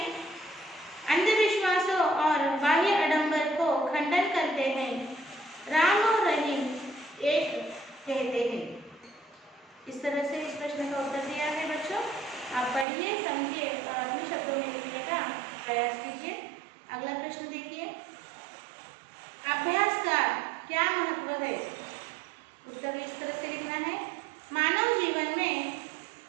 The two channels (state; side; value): drops out; left; at 12.9 s